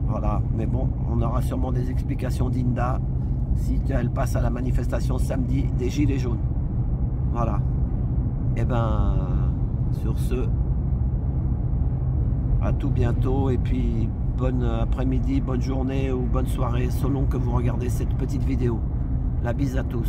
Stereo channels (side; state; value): both; identical; correlation 1.00